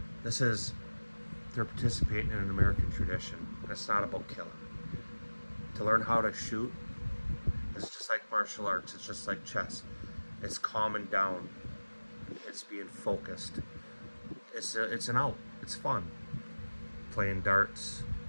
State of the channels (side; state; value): both; inverted; correlation -1.00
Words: This is, they're participating in an American tradition. It's not about killing. To learn how to shoot is just like martial arts. It's just like chess. It's calming down. It's being focused. It's an out. It's fun. Playing darts,